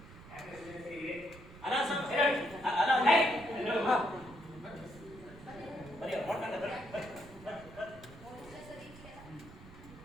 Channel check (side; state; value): right; noise; rumble, 18 dB below the sound